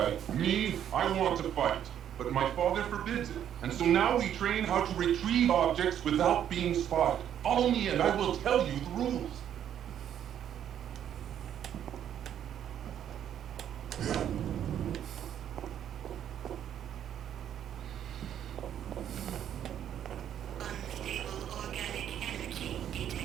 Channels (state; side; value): quieter; left; 10.0 dB